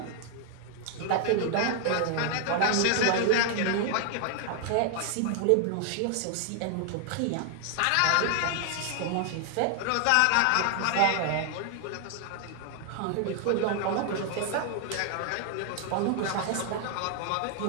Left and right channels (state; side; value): different; both; correlation 0.00